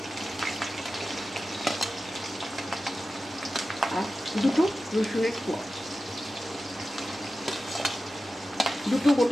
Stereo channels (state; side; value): noise; right; rumble, 28 dB below the sound